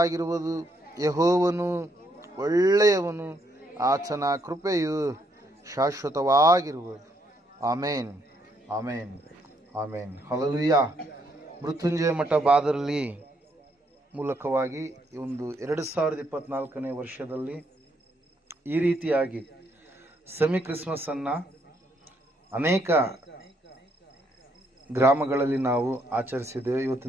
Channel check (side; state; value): both; normal; correlation 0.73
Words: ಯೆಹೋವನು ಒಳ್ಳೆಯವನು, ಆತನ ಕೃಪೆಯು ಶಾಶ್ವತವಾಗಿರುವುದು. ಆಮೇನ್, ಆಮೇನ್, ಆಮೇನ್. ಹಲ್ಲೆಲೂಯಾ. ಮೃತ್ಯುಂಜಯ ಮಠ ಬಾದರಲ್ಲಿ ಮೂಲಕವಾಗಿ ಒಂದು 2024ನೇ ವರ್ಷದಲ್ಲಿ ಈ ರೀತಿಯಾಗಿ ಸೆಮಿ ಕ್ರಿಸ್ಮಸ್ ಅನ್ನ ಅನೇಕ ಗ್ರಾಮಗಳಲ್ಲಿ ನಾವು ಆಚರಿಸಿದ್ದೇವೆ.